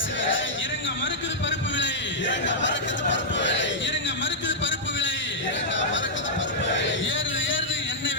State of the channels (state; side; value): normal; both; correlation -0.09